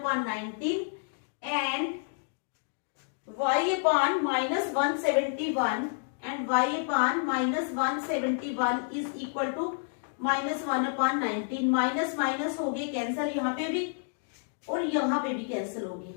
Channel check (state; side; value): silent; right; digital silence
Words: 19 and y upon -171 and y upon -171 is equal to -1 upon 19। Minus minus हो गए कैंसिल, यहाँ पे भी और यहाँ पे भी कैंसिल हो गए।